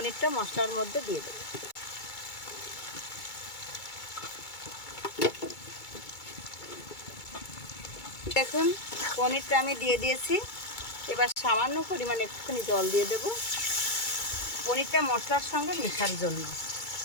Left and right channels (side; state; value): right; late; 2.2 ms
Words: মশলার মধ্যে দিয়ে দেবো। দেখুন পনিরটা আমি দিয়ে দিয়েছি। এবার সামান্য পরিমাণে একটুখানি জল দিয়ে দেব পনিরটা মশলার সঙ্গে মেশার জন্য।